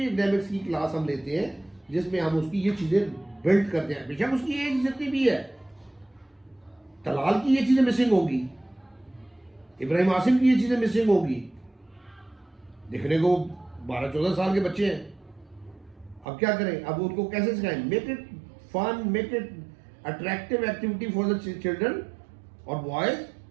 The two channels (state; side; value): drops out; left; at 16.2 s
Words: की क्लास हम लेते हैं, जिसमें हम उसकी ये चीज़ें बिल्ड करते हैं। बेशक उसकी एज जितनी भी है, तलाल की ये चीज़ें मिसिंग होगी, इब्राहिम आसिम की ये चीज़ें मिसिंग होगी। दिखने को 12-14 साल के बच्चे हैं, अब क्या करें? अब उनको कैसे सिखाएं? Make it fun, make it attractive activity for the children और boys